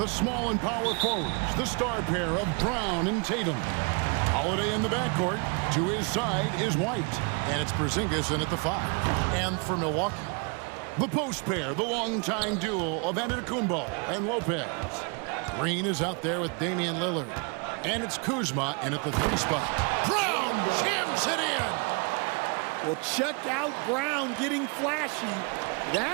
small and power forwards, the star pair of Brown and Tatum. Holiday in the backcourt. To his side is White, and it's Porzingis in at the 5. And for Milwaukee, the post pair, the longtime duo of Antetokounmpo and Lopez. Green is out there with Damian Lillard, and it's Kuzma in at the 3 spot. Brown jams it in. Well, check out Brown getting flashy.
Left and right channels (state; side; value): quieter; left; 34.4 dB